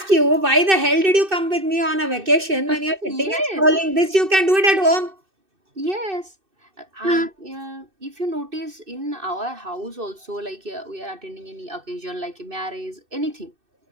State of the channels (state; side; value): late; left; 2.6 ms